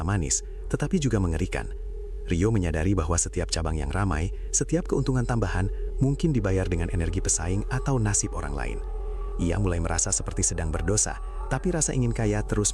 manis, tetapi juga mengerikan. Rio menyadari bahwa setiap cabang yang ramai, setiap keuntungan tambahan mungkin dibayar dengan energi pesaing atau nasib orang lain. Ia mulai merasa seperti sedang berdosa, tapi rasa ingin kaya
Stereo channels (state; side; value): identical; both; correlation 1.00